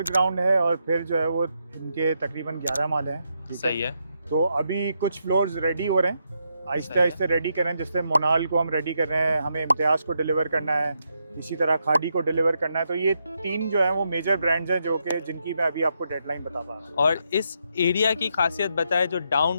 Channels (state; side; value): inverted; both; correlation -0.81